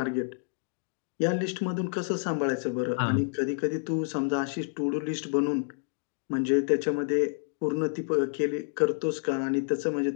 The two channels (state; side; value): silent; right; digital silence